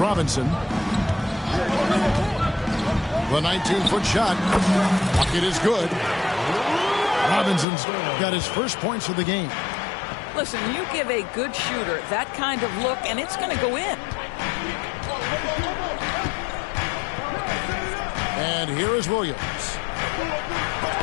The 19-foot shot. Bucket is good. Robinson's got his first points of the game. Listen, you give a good shooter that kind of look, and it's going to go in. And here is Williams.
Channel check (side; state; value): right; drops out; at 7.7 s